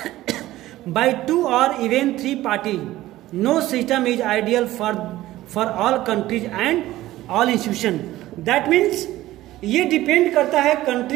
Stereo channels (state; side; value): quieter; left; 15.8 dB